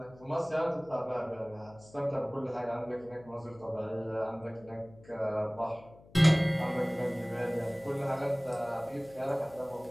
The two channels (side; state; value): left; noise; hum, 24 dB below the sound